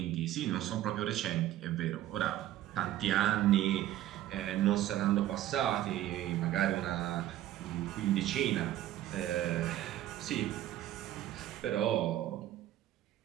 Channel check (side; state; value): left; quieter; 13.4 dB